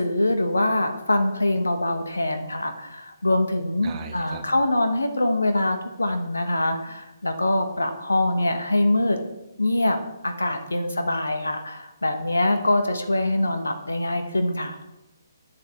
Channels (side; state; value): both; inverted; correlation -0.93